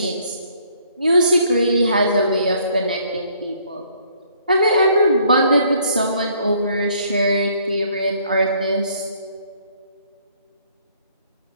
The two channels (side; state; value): both; inverted; correlation -0.64